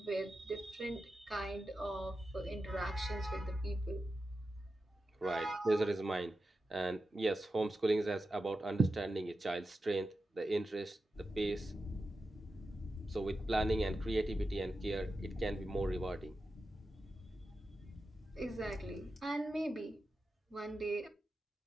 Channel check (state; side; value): normal; both; correlation 0.91